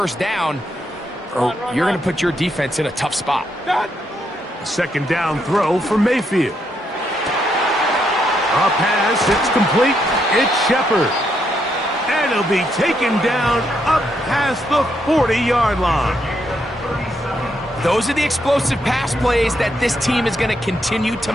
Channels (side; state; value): both; normal; correlation 0.77